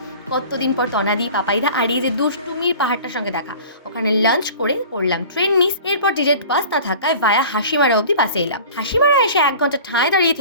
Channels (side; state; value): both; inverted; correlation -0.42